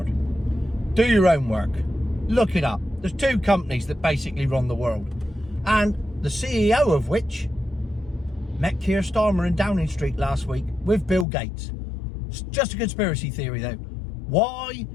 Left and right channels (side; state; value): right; drops out; at 11.2 s